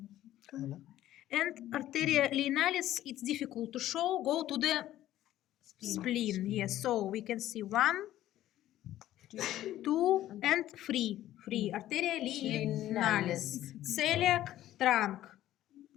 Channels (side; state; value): right; quieter; 13.5 dB